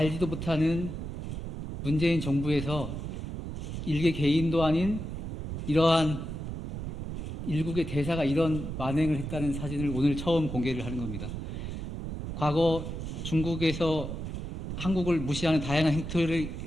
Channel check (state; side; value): noise; right; rumble, 6 dB below the sound